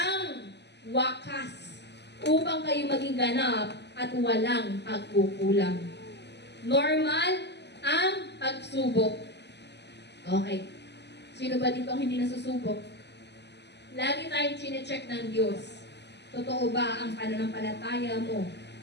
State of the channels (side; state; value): right; late; 0.50 ms